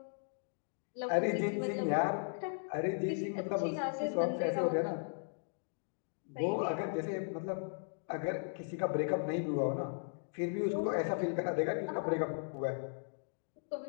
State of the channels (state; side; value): silent; right; digital silence